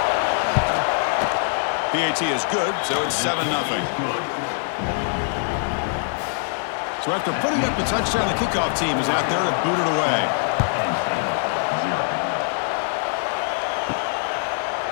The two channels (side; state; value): right; silent; digital silence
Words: PAT is good, so it's 7-0. So after putting up the touchdown, the kickoff team is out there to boot it away.